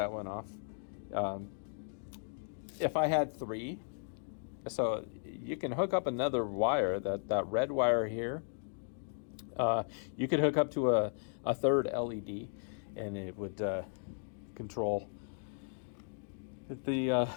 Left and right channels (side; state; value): right; silent; digital silence